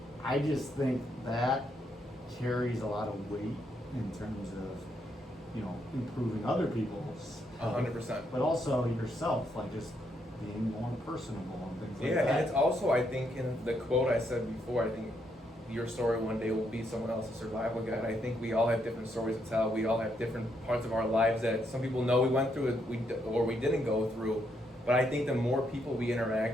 I just think that carries a lot of weight in terms of, you know, improving other people's health, 100%. but also yourself, like just being more personable and things like that. Yeah, and it's also, I think, in the quote I said before, I think your story one day will be someone else's survival guide. I think we all have different stories to tell. We all have different parts of our lives that some people know we went through it, or we didn't go through. But I think the more people we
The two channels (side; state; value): both; normal; correlation 0.76